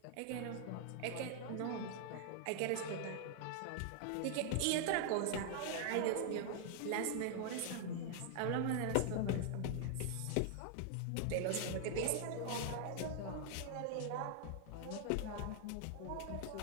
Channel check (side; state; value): both; different; correlation 0.00